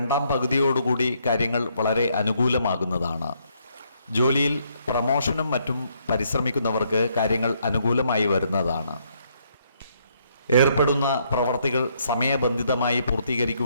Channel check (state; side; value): inverted; both; correlation -0.71